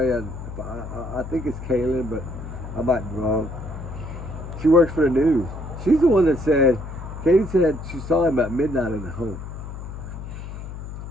I think it's Caitlin, but I might be wrong. She works for the news. She's the one that said, Katie said she saw him at midnight in the home.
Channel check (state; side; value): noise; left; hum, 10 dB below the sound